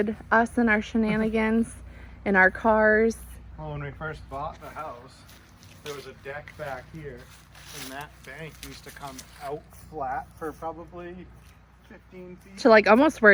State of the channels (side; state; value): both; identical; correlation 1.00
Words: us and our shenanigans and our cars. Well, when we first bought the house, there was a deck back here, and that bank used to come out flat for probably 15 feet. To like almost where